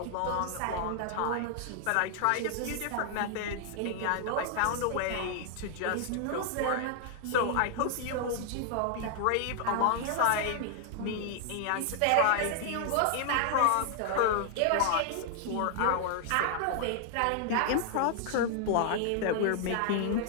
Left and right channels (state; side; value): different; both; correlation 0.00